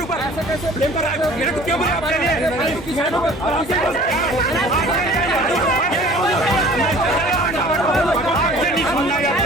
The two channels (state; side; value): normal; both; correlation 0.48